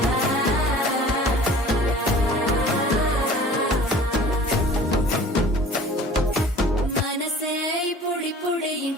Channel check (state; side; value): normal; both; correlation 0.46